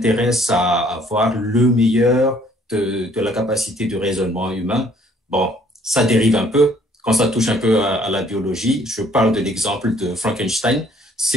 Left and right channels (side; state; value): both; normal; correlation 0.61